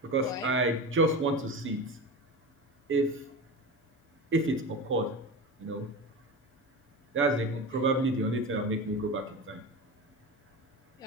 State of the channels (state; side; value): normal; both; correlation 0.26